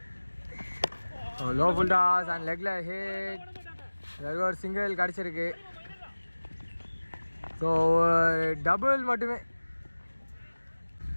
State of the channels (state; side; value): inverted; both; correlation -1.00